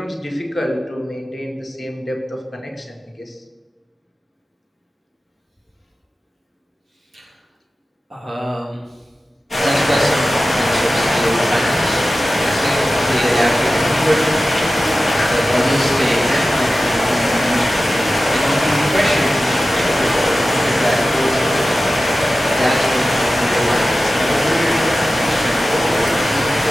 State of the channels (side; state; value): both; normal; correlation 0.94